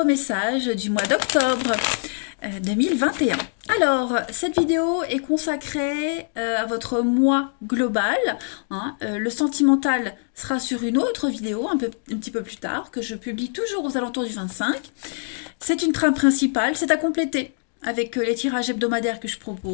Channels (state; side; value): silent; right; 63 dB below the other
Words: messages du mois d'octobre 2021. Alors, cette vidéo est consacrée à votre mois global. Le sentimental sera sur une autre vidéo un petit peu plus tard, que je publie toujours aux alentours du 25. C'est une trame principale, c'est à compléter avec les tirages hebdomadaires que je